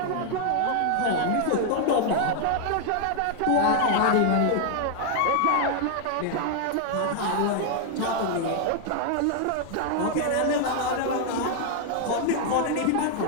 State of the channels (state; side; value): different; both; correlation 0.00